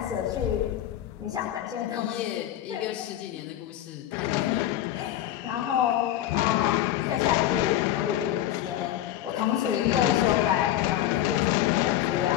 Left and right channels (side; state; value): right; quieter; 12.4 dB